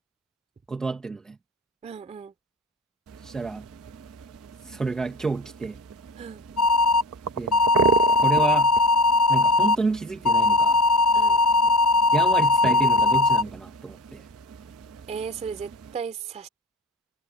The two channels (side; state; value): both; normal; correlation 0.33